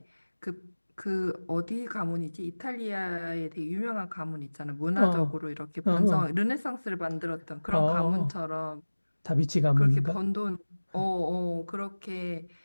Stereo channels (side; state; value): both; inverted; correlation -1.00